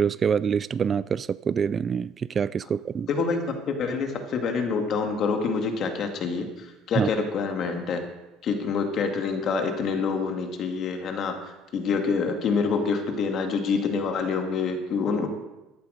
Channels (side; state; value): both; normal; correlation 0.60